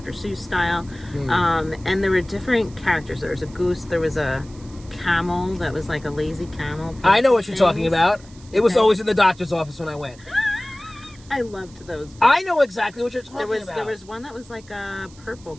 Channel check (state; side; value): noise; right; hiss, 24 dB below the sound